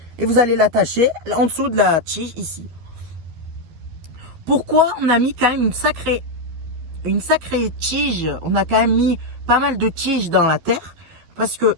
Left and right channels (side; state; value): left; late; 12 ms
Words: et vous allez l'attacher en dessous de la tige ici. Pourquoi on a mis quand même une sacrée tige, on a quand même mis pas mal de tiges dans la terre, parce que